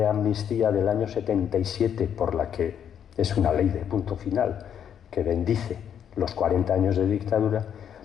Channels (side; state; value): right; quieter; 8.8 dB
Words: amnistía del año 77, por la que es una ley de punto final, que bendice los 40 años de dictadura,